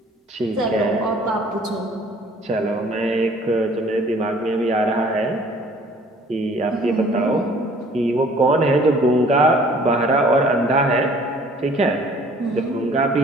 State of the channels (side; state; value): both; normal; correlation 0.54